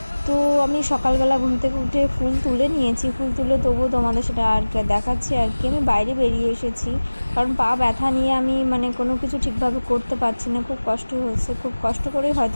তো আমি সকালবেলা ঘুম থেকে উঠে ফুল তুলে নিয়েছি, ফুল তুলে তবুও তোমাদের সেটা আর কি দেখাচ্ছি আর কি। আমি বাইরে বেরিয়ে এসেছি কারণ পা ব্যথা নিয়ে আমি কোনো কিছু ঠিকভাবে করতে পারছি না, খুব কষ্ট হচ্ছে। খুব কষ্ট করেই হয়তো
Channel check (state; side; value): inverted; both; correlation -1.00